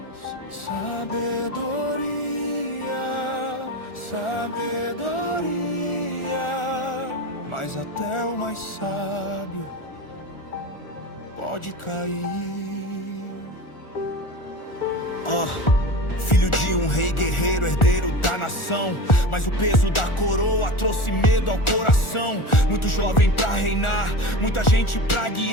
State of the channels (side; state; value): right; late; 1.4 ms